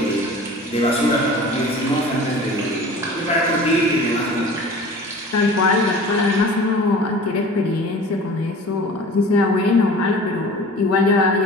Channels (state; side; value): normal; both; correlation 0.41